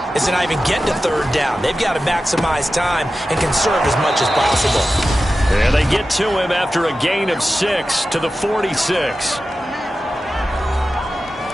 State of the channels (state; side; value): normal; both; correlation 0.93